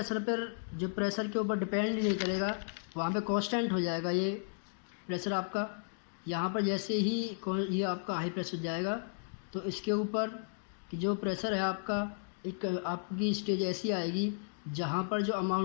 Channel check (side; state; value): right; silent; digital silence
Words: पर जो प्रेशर के ऊपर डिपेंड नहीं करेगा वहाँ पे कांस्टेंट हो जाएगा ये प्रेशर आपका। यहाँ पर जैसे ही ये आपका हाई प्रेशर जाएगा तो इसके ऊपर कि जो प्रेशर है आपका, एक आपकी स्टेज ऐसी आएगी जहाँ पर जो